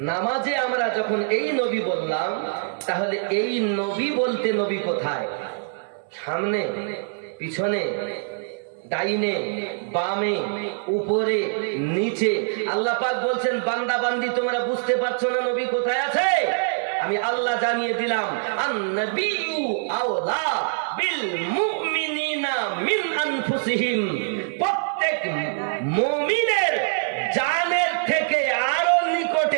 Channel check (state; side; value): silent; left; digital silence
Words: নামাজে আমরা যখন এই নবী বললাম, তাহলে এই নবী বলতে নবী কোথায়? সামনে, পিছনে, ডাইনে, বামে, উপরে, নিচে? আল্লাহ পাক বলছেন বান্দা বান্দি তোমরা বুঝতে পারছো না নবী কোথায় আছে? আমি আল্লাহ জানিয়ে দিলাম, আন-নাবিয়্যু আওলা বিল মুমিনিনা মিন আনফুসিহিম, প্রত্যেক মুমিনের জানের থেকে আরো